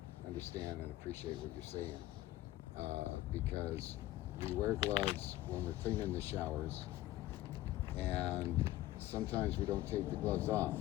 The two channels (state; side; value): quieter; right; 15.8 dB